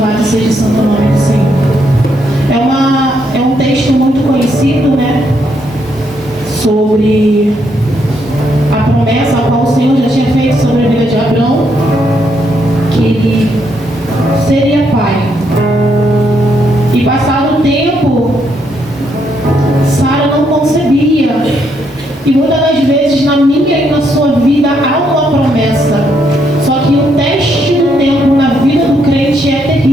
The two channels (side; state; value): both; normal; correlation 0.75